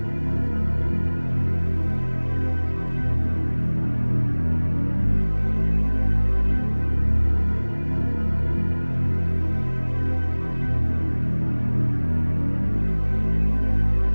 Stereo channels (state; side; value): inverted; both; correlation -1.00